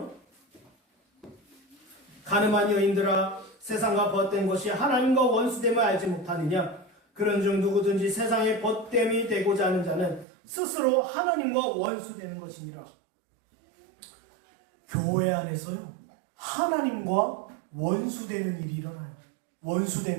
가늠한 여인들아, 세상과 벗된 것이 하나님과 원수됨을 알지 못하느냐? 그런즉 누구든지 세상에 벗됨이 되고자 하는 자는 스스로 하나님과 원수되는 것이니라. 교회 안에서요, 하나님과 원수되는 일이 일어나요.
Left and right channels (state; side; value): drops out; left; at 10.2 s